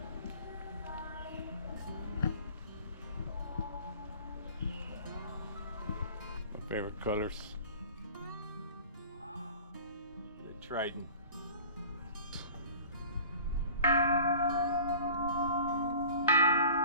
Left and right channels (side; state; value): both; inverted; correlation -0.44